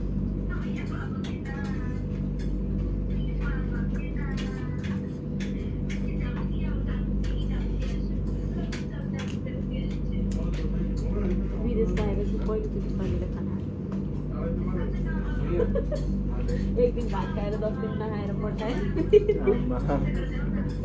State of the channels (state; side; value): identical; both; correlation 1.00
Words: विदेश गएर चाहिँ पहिलोचोटि शरीरले खाना एक दिन भात खाएर 10 दिन नखाएर पठाएँ